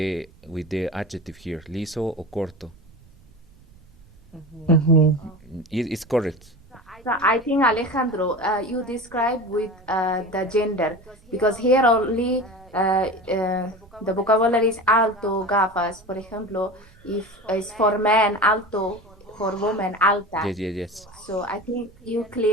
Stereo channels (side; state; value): right; noise; rumble, 26 dB below the sound